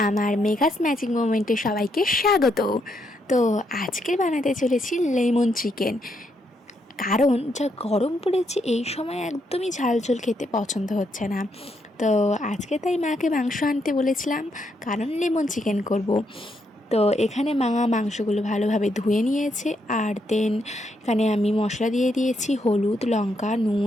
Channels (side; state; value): both; normal; correlation 0.77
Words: আমার মেঘাস ম্যাজিক মোমেন্টে সবাইকে স্বাগত। তো আজকে বানাতে চলেছি লেমন চিকেন। কারণ যা গরম পড়েছে এই সময় একদমই ঝাল ঝোল খেতে পছন্দ হচ্ছে না। তো আজকে তাই মাকে মাংস আনতে বলেছিলাম, কারণ লেমন চিকেন করব। তো এখানে মা মাংসগুলো ভালোভাবে ধুয়ে নিয়েছে, আর দেন এখানে আমি মশলা দিয়ে দিয়েছি হলুদ, লঙ্কা,